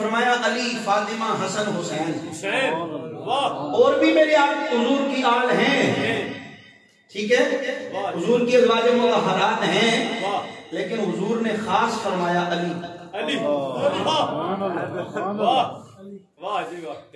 علی، فاطمہ، حسن، حسین، اور بھی میرے آپ حضور کی آل ہیں، ٹھیک ہے، حضور کی ازواج مطہرات ہیں، لیکن حضور نے خاص فرمایا علی۔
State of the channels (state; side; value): identical; both; correlation 1.00